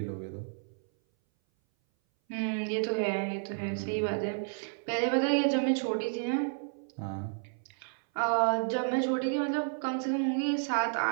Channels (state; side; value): silent; left; 57 dB below the other